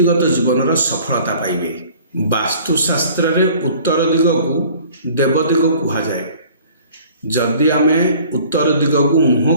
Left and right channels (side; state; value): both; inverted; correlation -0.50